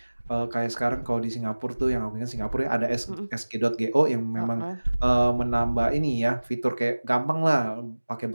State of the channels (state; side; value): inverted; both; correlation -1.00